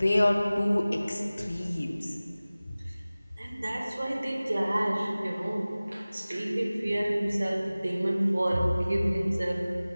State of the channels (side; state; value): both; inverted; correlation -0.98